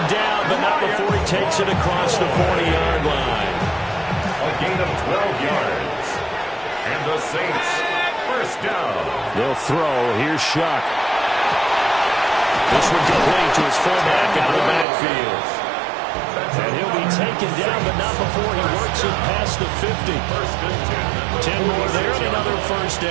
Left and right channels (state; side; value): drops out; left; at 14.9 s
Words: down, but not before he takes it across the 40-yard line. A gain of 12 yards. And the Saints, first down. They'll throw. Here's Shuck. This one complete to his fullback out of the backfield. And he'll be taken down, but not before he works it past the 50. 10 more there, and another first